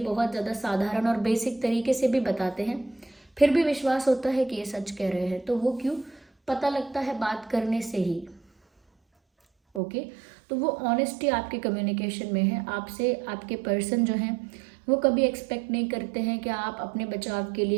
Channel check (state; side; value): drops out; left; at 9.8 s